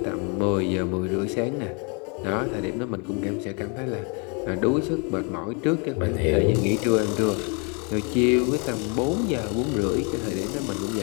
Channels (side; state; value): right; quieter; 35.1 dB